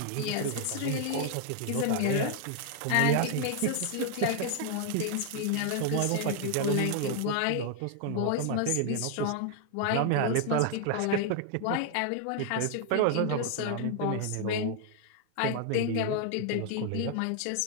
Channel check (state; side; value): different; both; correlation 0.00